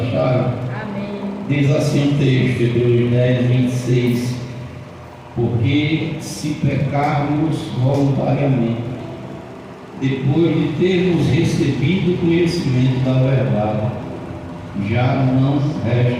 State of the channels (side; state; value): both; identical; correlation 1.00